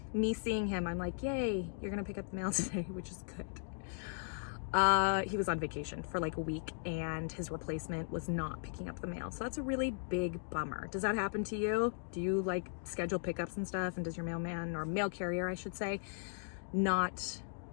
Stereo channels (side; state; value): right; silent; digital silence